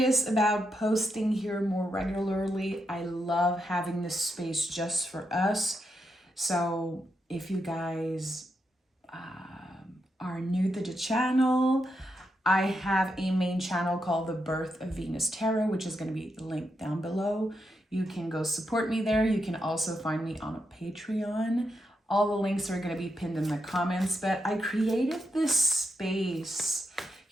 about posting here more regularly. I love having this space just for us. So if you guys are new to the channel, I have a main channel called The Birth of Venus Tarot, which is going to be linked down below. You can go support me there. You can also find me on a Patreon. All the links are going to be pinned in the comments, but I created this space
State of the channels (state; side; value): normal; both; correlation 0.84